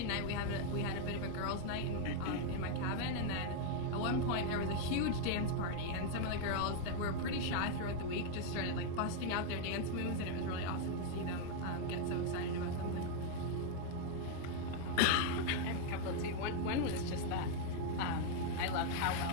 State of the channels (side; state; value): both; different; correlation 0.00